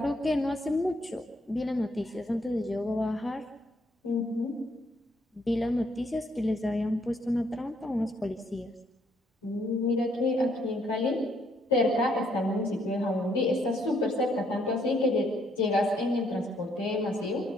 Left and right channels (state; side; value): normal; both; correlation 0.70